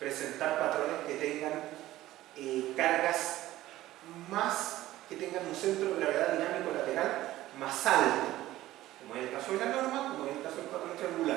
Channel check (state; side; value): quieter; left; 15.4 dB